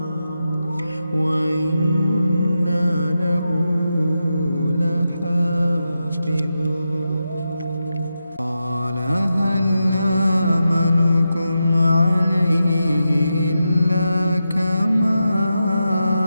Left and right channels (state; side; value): inverted; both; correlation -0.89